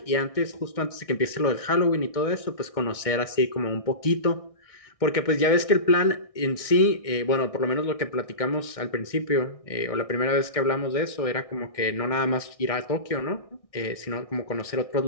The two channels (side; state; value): right; late; 1.6 ms